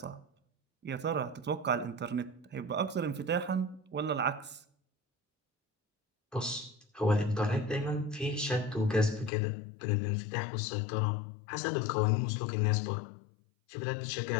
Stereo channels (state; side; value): drops out; right; at 9.3 s